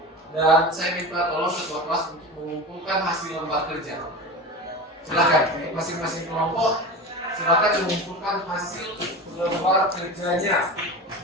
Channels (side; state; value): both; normal; correlation 0.28